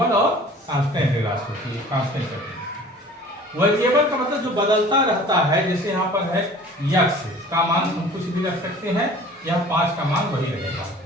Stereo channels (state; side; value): normal; both; correlation 0.46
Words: और कांस्टेंट राशि होती है। कांस्टेंट वेरिएबल का मतलब जो बदलता रहता है, जैसे यहाँ पर है x का मान हम कुछ भी रख सकते हैं, यह 5 का मान वही रहेगा।